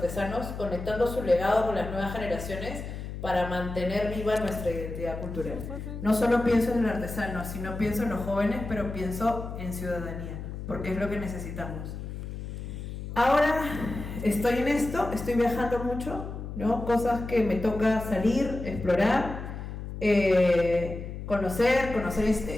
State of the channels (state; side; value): noise; left; hum, 8 dB below the sound